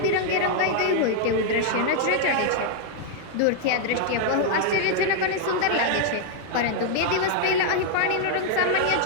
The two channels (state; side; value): different; both; correlation 0.00